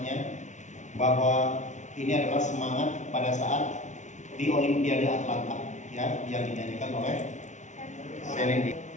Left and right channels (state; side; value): late; right; 0.35 ms